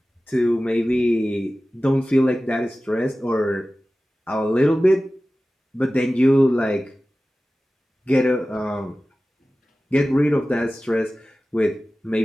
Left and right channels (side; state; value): both; normal; correlation 0.96